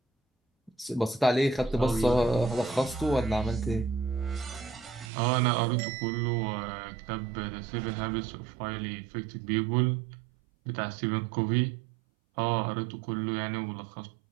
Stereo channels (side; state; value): left; drops out; at 5.1 s